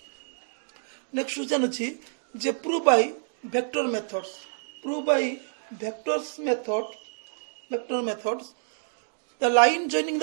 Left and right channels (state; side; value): silent; left; digital silence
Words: question अछि जे prove by vector methods the line joining